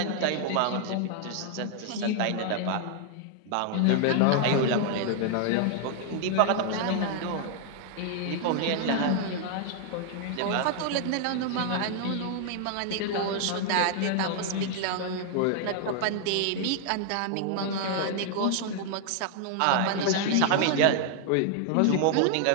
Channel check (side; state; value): both; different; correlation 0.00